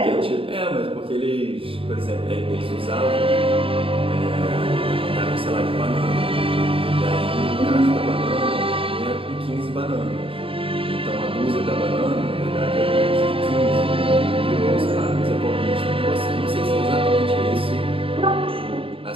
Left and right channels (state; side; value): late; left; 0.26 ms